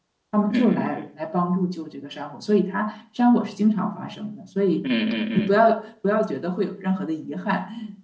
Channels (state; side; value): identical; both; correlation 1.00